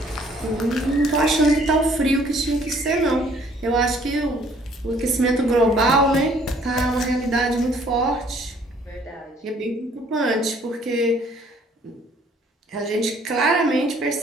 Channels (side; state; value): both; normal; correlation 0.60